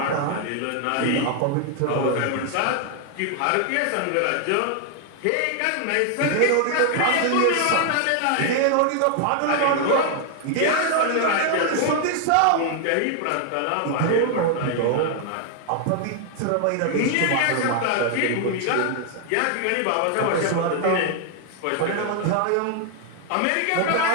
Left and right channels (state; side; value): different; both; correlation 0.00